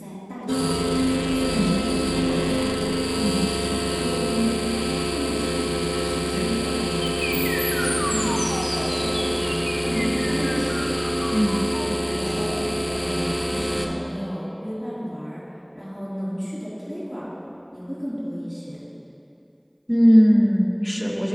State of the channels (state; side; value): identical; both; correlation 1.00